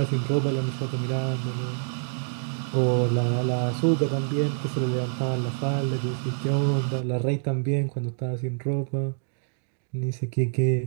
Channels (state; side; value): silent; left; digital silence